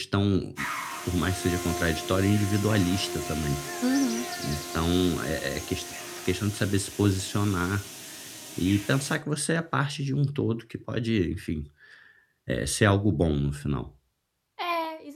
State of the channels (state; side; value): identical; both; correlation 1.00